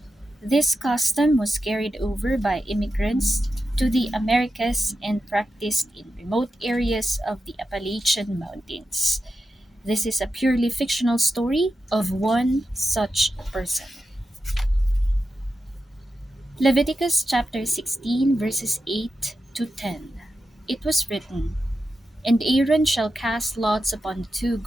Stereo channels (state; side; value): normal; both; correlation 0.90